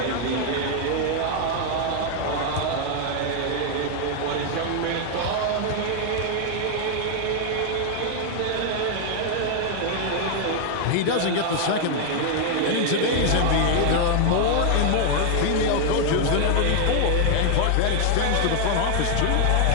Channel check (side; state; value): both; different; correlation 0.00